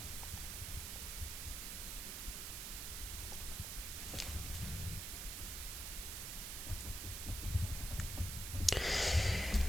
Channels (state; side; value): noise; right; hiss, 4 dB below the sound